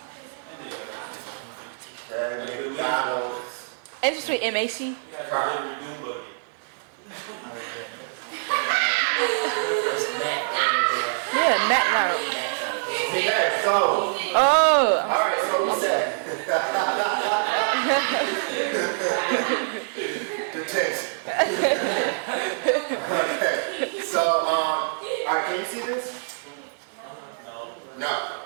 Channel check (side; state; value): left; silent; 55 dB below the other